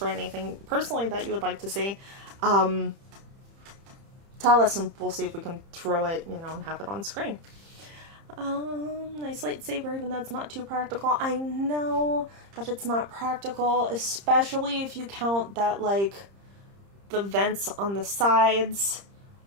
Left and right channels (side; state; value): left; late; 30 ms